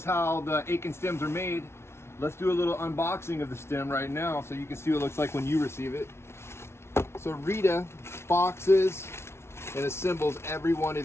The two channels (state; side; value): late; right; 0.12 ms